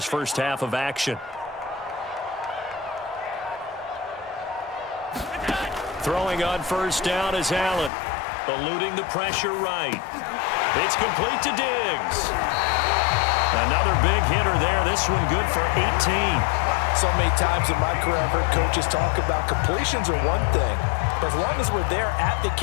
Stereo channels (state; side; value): drops out; right; at 7.9 s